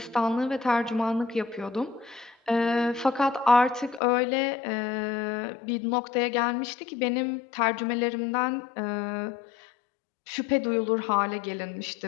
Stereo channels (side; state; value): right; drops out; at 4.0 s